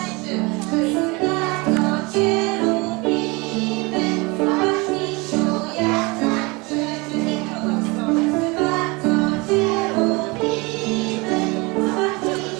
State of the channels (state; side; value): quieter; left; 26.1 dB